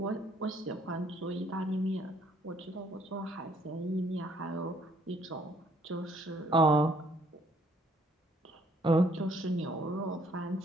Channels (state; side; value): normal; both; correlation 0.64